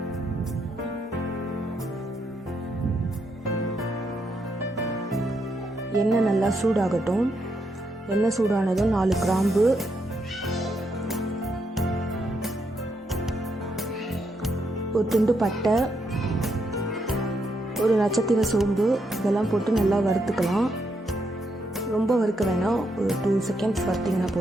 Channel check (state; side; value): normal; both; correlation 0.79